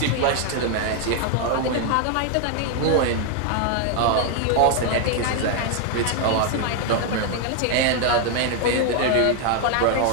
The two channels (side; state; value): both; different; correlation 0.00